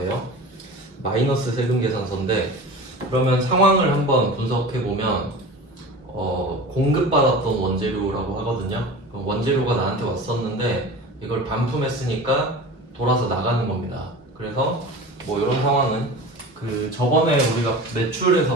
마이너스 세금 계산서인데, 그러면 상황을 한번 분석해 보면 공급받았던 원재료라고 하거든요. 원재료가 나한테 왔었는데 이걸 반품했으니까 돌아서 나가는 겁니다. 그래서 뭐 이런 상황은 그 저번에 우리가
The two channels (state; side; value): normal; both; correlation 0.35